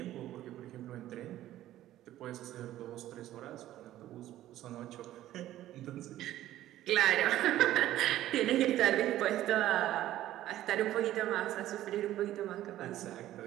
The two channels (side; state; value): left; quieter; 13.8 dB